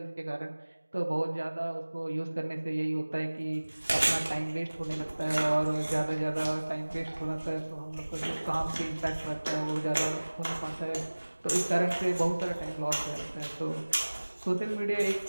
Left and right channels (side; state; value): both; inverted; correlation -1.00